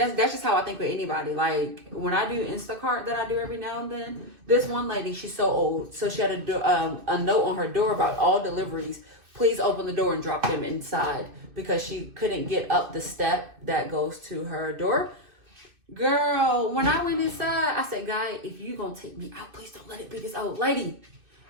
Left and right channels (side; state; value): left; late; 2.6 ms